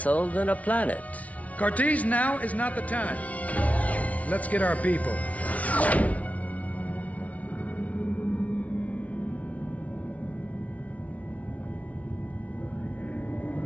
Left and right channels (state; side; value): late; right; 0.068 ms